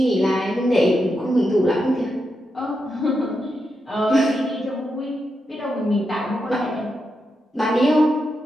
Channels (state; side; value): normal; both; correlation 0.85